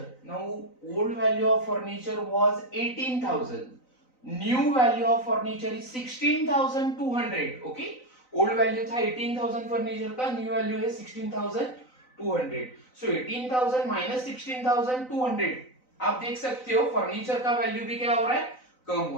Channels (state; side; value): late; right; 3.9 ms